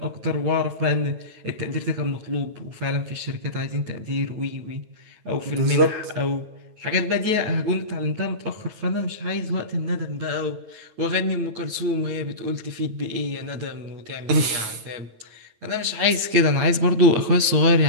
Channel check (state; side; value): late; left; 9.1 ms